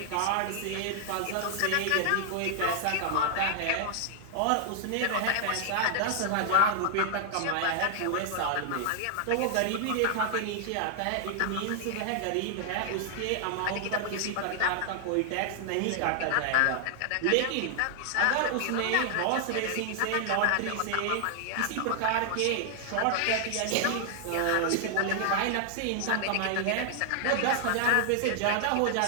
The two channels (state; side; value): different; both; correlation 0.00